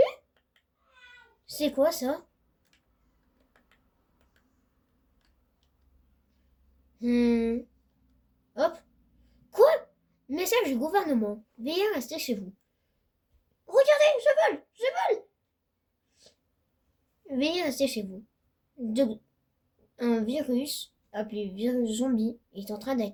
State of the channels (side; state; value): both; identical; correlation 1.00